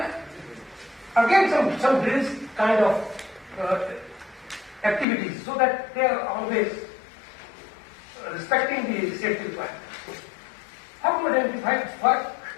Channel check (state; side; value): drops out; right; at 5.1 s